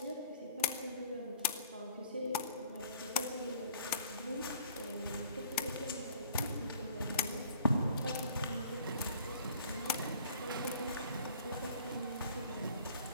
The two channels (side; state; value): both; inverted; correlation -0.53